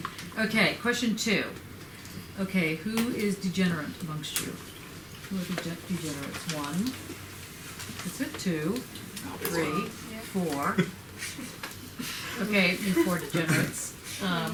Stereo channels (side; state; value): both; identical; correlation 1.00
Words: Okay, question 2. Okay, who is degenerate amongst you? Who are degenerates? 1. That's it. 2, 3, 4. Okay, you 4 degenerates. Do